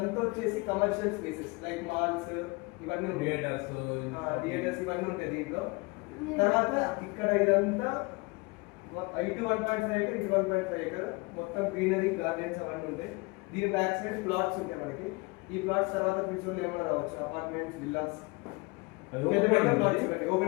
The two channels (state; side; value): quieter; right; 27.0 dB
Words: వచ్చేసి కమర్షియల్ స్పేసెస్ లైక్ మాల్స్ ఇవన్నీ థియేటర్స్ ఇవన్నీ ఉంటాయి దీంట్లో. తర్వాత ఇక్కడ ఇదంతా ఇటు 1.5 ఎకర్ ఇటు 1.5 ఎకర్ మొత్తం గ్రీనరీ గార్డెన్స్ అవన్నీ ఉంటాయి. దీని బ్యాక్ సైడ్ ప్లాట్స్ ఉంటాయి మనకి. ఈ ప్లాట్స్ తర్వాత ఫ్యూచర్ లో ఏమైనా రావచ్చు, అపార్ట్మెంట్స్, విల్లాస్,